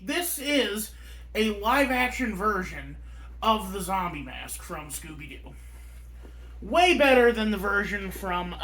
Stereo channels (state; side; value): identical; both; correlation 1.00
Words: this is a live-action version of the zombie mask from Scooby-Doo. Way better than the version from